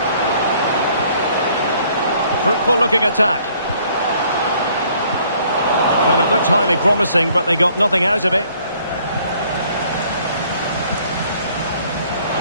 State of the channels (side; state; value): both; inverted; correlation -0.61